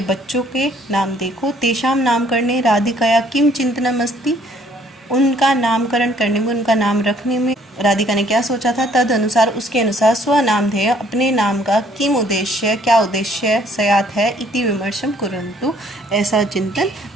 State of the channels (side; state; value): both; normal; correlation 0.62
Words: बच्चों के नाम देखो। तेषां नामकरणे राधिकाया किं चिंतनम अस्ति, उनका नामकरण करने में, उनका नाम रखने में राधिका ने क्या सोचा था। तद अनुसार, उसके अनुसार स्वनामधेय अपने नाम का किम उद्देश्य, क्या उद्देश्य स्यात् है इति विमर्शम कुर्वन्तु, ऐसा चिंतन